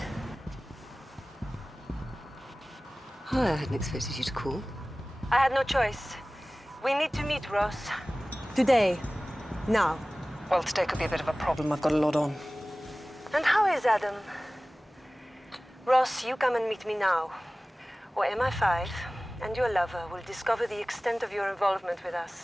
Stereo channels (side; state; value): both; normal; correlation 0.98